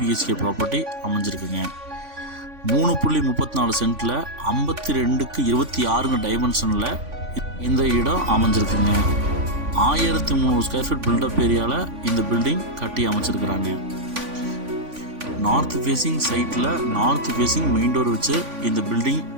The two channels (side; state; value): left; late; 3.5 ms